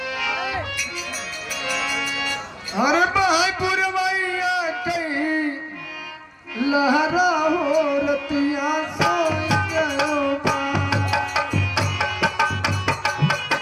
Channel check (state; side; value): identical; both; correlation 1.00